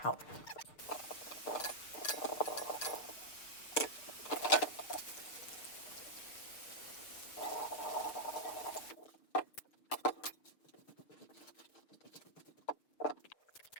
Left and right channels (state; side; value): late; right; 6.6 ms